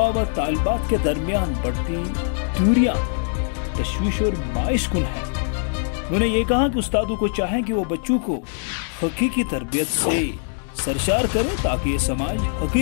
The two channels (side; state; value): right; silent; 64 dB below the other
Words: व तालिबात के दरमियान बढ़ती दूरियां तशवीश और बाइस कुन है। उन्होंने ये कहा कि उस्तादों को चाहें कि वो बच्चों को हकीकी तरबियत से सरशार करें ताकि ये समाज